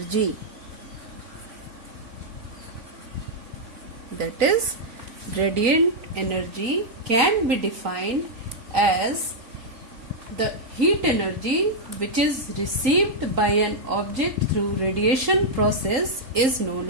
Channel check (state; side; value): late; left; 3.9 ms